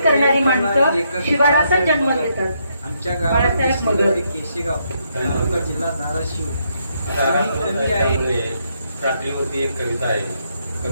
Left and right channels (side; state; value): both; inverted; correlation -0.76